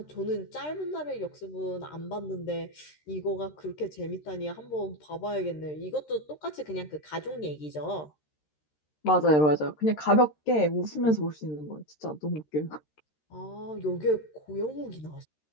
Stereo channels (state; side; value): late; right; 13 ms